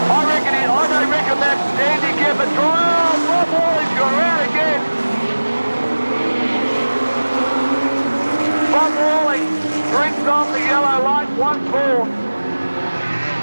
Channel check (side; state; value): both; inverted; correlation -1.00